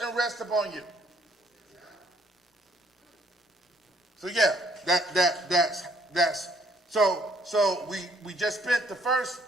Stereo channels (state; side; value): normal; both; correlation 0.64